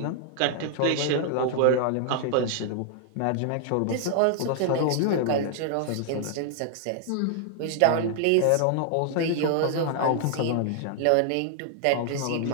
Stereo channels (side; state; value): both; different; correlation -0.01